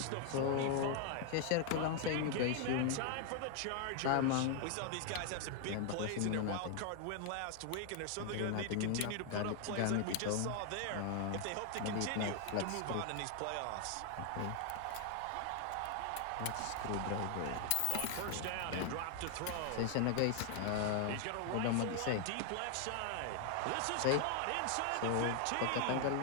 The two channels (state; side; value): different; both; correlation 0.00